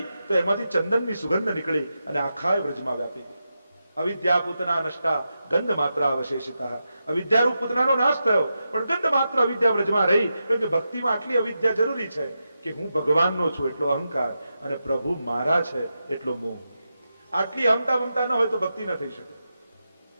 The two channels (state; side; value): inverted; both; correlation -0.89